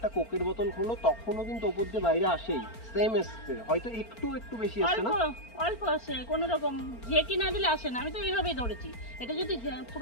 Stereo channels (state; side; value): late; right; 4.4 ms